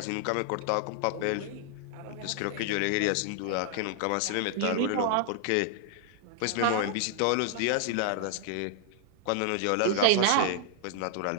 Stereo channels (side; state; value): both; different; correlation 0.00